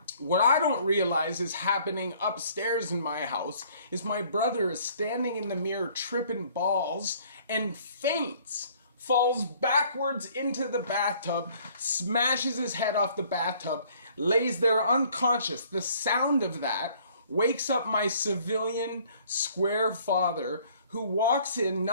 What I don't realize is happening upstairs in my house is my brother is standing in the mirror tripping balls and faints, falls backwards into the bathtub, smashes his head off the bathtub, lays there unconscious. The sound of that wakes up my civilian square father, who walks in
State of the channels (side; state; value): both; inverted; correlation -0.58